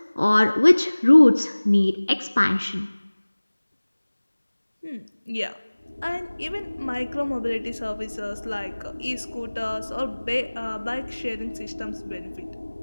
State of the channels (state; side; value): inverted; both; correlation -1.00